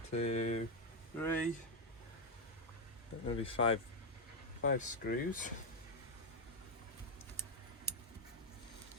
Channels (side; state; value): both; normal; correlation 0.03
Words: 2, 3. Maybe 5 screws.